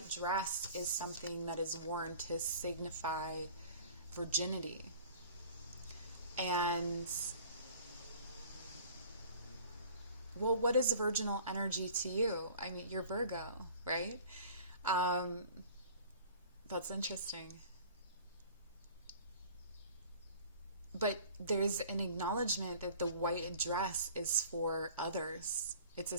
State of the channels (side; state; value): both; inverted; correlation -0.46